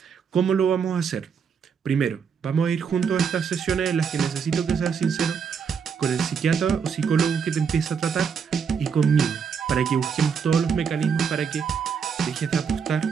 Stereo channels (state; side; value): quieter; left; 6.5 dB